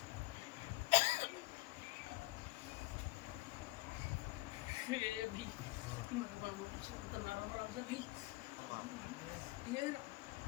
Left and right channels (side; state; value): right; quieter; 21.0 dB